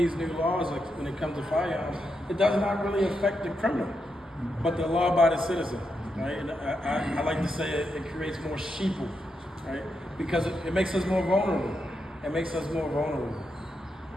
new laws, like when it comes to firearms, it does not really affect the criminal, but the law-abiding citizen, right? And I like to say it creates more sheeple, right? Because it makes us more vulnerable. It makes us more vulnerable.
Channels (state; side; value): normal; both; correlation 0.84